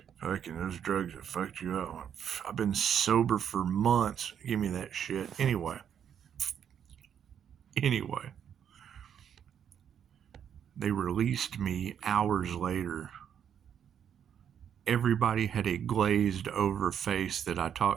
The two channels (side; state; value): left; quieter; 8.7 dB